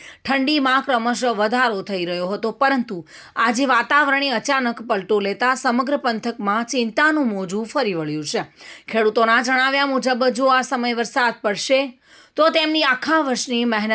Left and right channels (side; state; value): both; identical; correlation 1.00